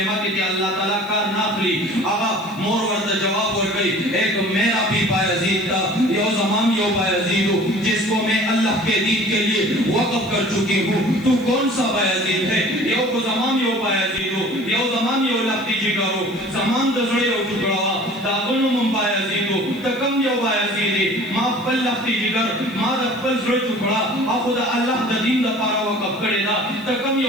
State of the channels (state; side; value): noise; right; hiss, 26 dB below the sound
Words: کې چې الله تعالی کار نه اخلي هغه مور ورته جواب ورکړي ایک میرا بھی بایزید تھا یو زمان یو بایزید ہوں جس کو میں اللہ کے دین کے لیے وقف کر چکی ہوں تو کون سا بایزید ہے یو کو زمان یو بایزید ہوں یو زمان یو لختی جگر ہوں زمان دزڑے یو ٹکڑا داغنو من بایزید ہوں تکم یو بایزید ہے ما پل لختی جگر ما دا پل زڑے ٹکڑا آخو دا اللہ دا دین دا پارا وقف کرے دا تکم